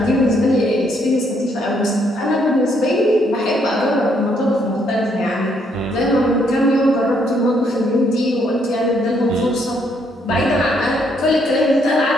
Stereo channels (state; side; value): normal; both; correlation 0.71